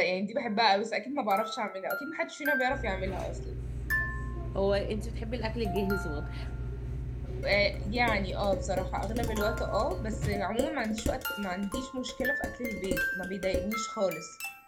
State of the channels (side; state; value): both; identical; correlation 1.00